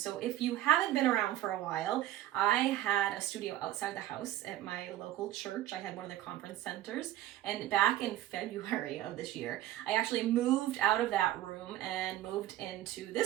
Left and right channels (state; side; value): quieter; left; 13.9 dB